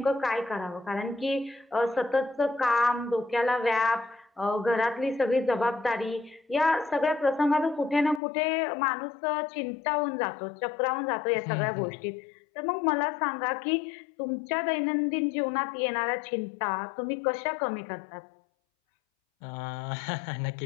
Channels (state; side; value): drops out; right; at 8.2 s